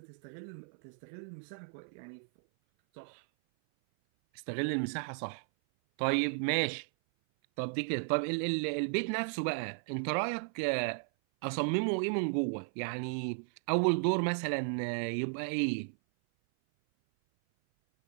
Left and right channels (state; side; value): silent; left; 55 dB below the other